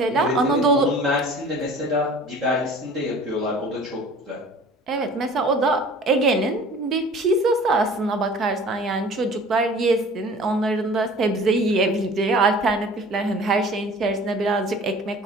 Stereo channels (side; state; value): both; normal; correlation 0.45